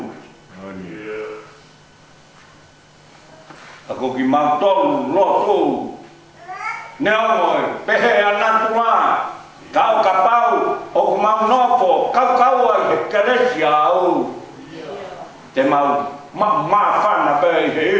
Ako ki mau tolu, lotu. Nea moi, pehe anatu la. Kau kapau, o ku mau nofo, kau ai he keresi au. Te mau whana pēi he.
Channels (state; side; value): identical; both; correlation 1.00